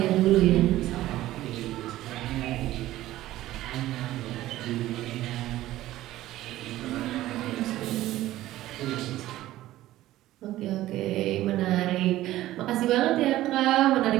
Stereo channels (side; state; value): left; quieter; 15.2 dB